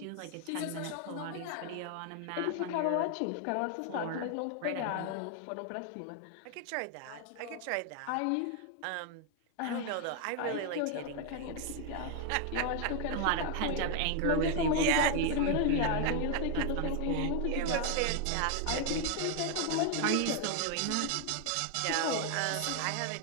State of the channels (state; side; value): different; both; correlation 0.00